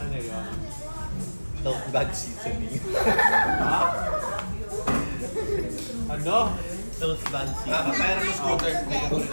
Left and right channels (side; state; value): both; inverted; correlation -1.00